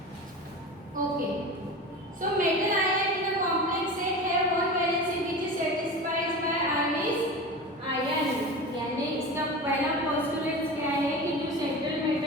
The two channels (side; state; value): both; normal; correlation 0.30